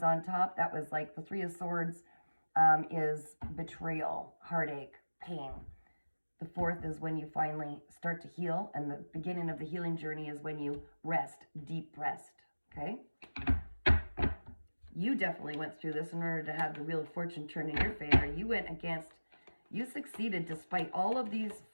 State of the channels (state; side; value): inverted; both; correlation -1.00